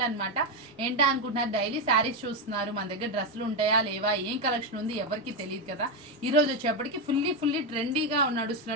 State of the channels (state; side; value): normal; both; correlation 0.07